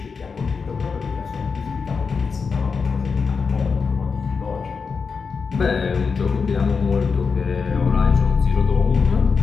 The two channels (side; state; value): right; quieter; 5.3 dB